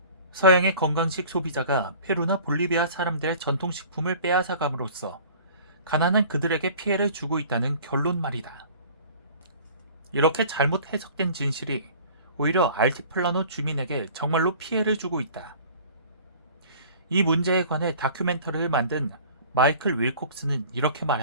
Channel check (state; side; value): inverted; both; correlation -0.46